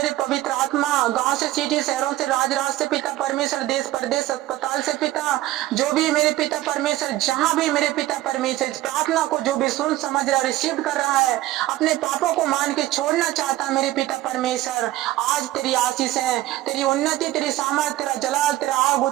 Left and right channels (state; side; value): quieter; left; 15.8 dB